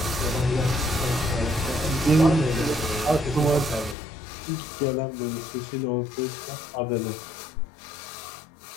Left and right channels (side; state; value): right; drops out; at 4.0 s